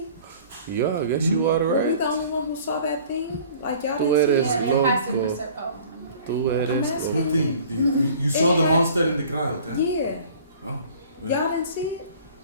Yeah, I guess you are Were we right. the only one who saw that thing? Like y'all Tú didn't see eres Yeah, it? go- it has to go. preserve. Oh, Tú eres. asking. What thing? You saw the It had- monster in the crowd, huh? Yeah. Oh, well, Y'all didn't see it?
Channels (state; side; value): inverted; both; correlation -0.48